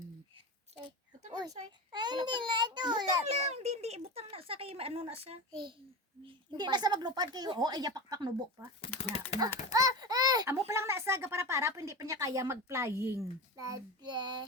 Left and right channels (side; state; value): both; normal; correlation 0.24